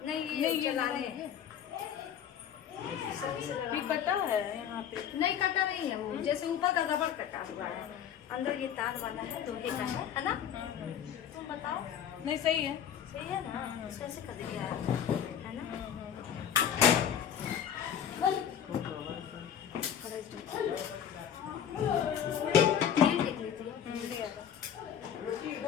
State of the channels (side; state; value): right; quieter; 9.0 dB